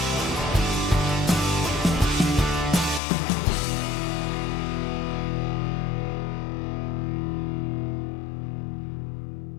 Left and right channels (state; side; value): drops out; right; at 3.0 s